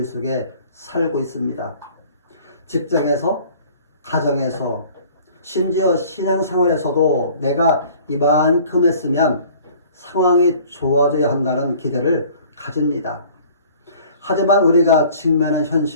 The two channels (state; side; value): inverted; both; correlation -0.51